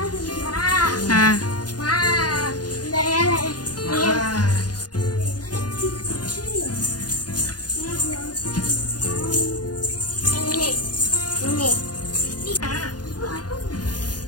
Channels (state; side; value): late; right; 0.69 ms